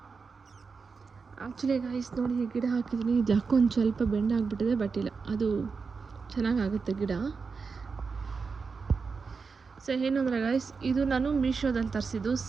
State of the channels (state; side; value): quieter; left; 5.0 dB